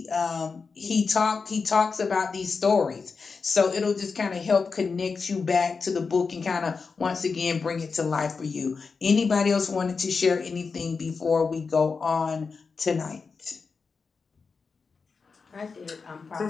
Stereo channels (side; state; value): right; quieter; 4.9 dB